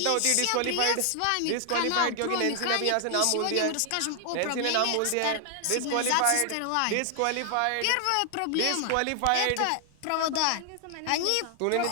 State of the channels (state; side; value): different; both; correlation 0.00